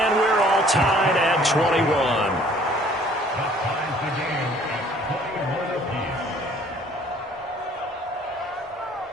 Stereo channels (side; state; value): both; normal; correlation 0.56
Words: we're all tied at 21.